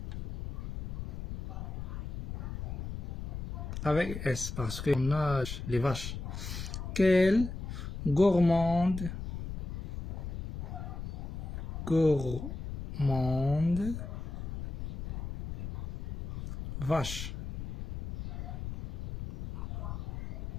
avec S parce qu'on a les vaches. Quelle gourmande, vache.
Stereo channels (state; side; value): noise; left; rumble, 7 dB below the sound